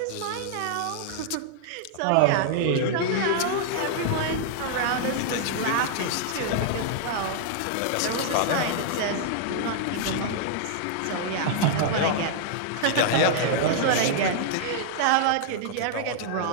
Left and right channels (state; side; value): different; both; correlation -0.01